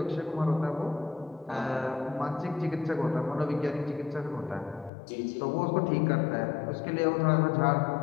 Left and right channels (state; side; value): drops out; right; at 4.9 s